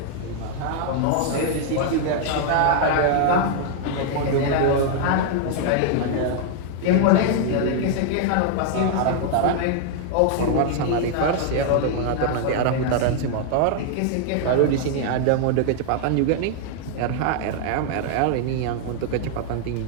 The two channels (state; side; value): different; both; correlation 0.00